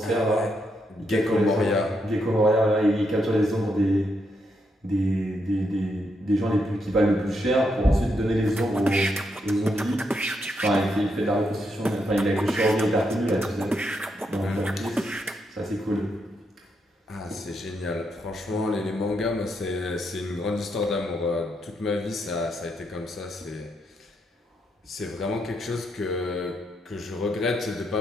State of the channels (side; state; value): both; normal; correlation 0.79